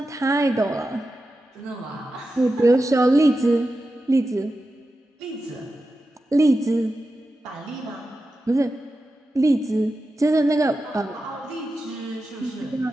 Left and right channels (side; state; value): both; normal; correlation 0.91